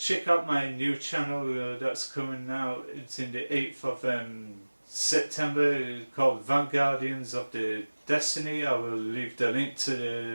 out my new channel that's coming out. It's in the 8th of September, called Vanguardians of the Destiny. I will leave the link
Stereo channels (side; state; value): both; inverted; correlation -1.00